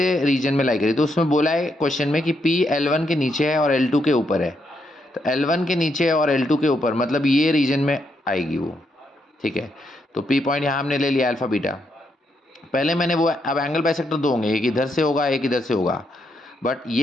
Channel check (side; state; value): both; normal; correlation 0.78